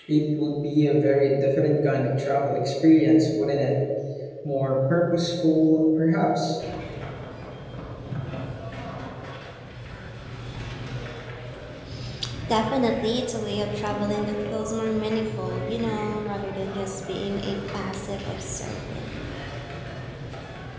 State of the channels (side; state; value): both; identical; correlation 1.00